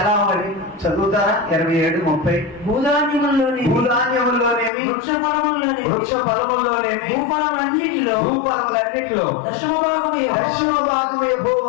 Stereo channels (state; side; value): drops out; right; at 4.7 s